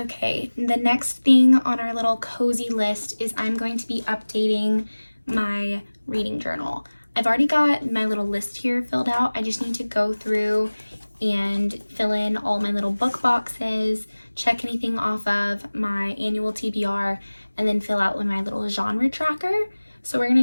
the next thing on our little cozy list is I'm going to be updating my reading journal. I've already got my little list here filled out. I just need to go through and fill in all my little book boxes, check anything off of my annual TBR, and then fill out my little genre tracker. So we're gonna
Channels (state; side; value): inverted; both; correlation -1.00